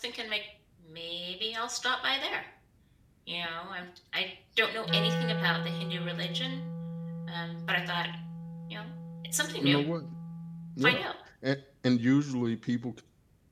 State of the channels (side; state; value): both; identical; correlation 1.00